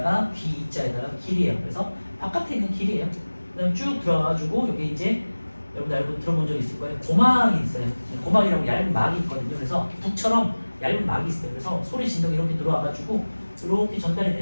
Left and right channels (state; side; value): inverted; both; correlation -1.00